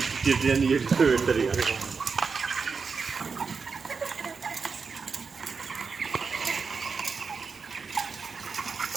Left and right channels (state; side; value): quieter; left; 5.2 dB